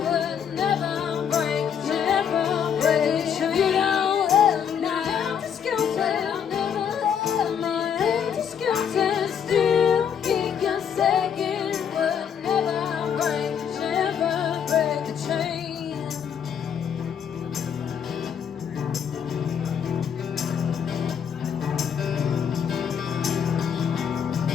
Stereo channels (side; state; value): right; quieter; 7.9 dB